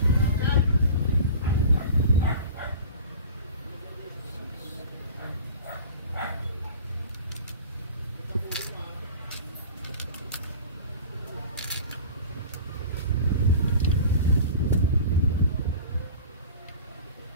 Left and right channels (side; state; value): both; inverted; correlation -0.38